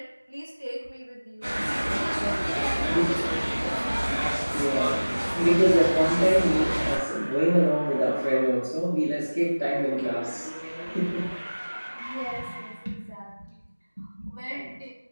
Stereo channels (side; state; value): both; inverted; correlation -1.00